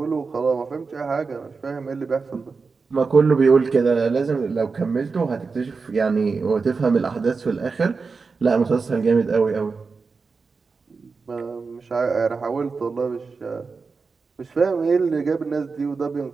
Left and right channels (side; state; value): left; quieter; 4.6 dB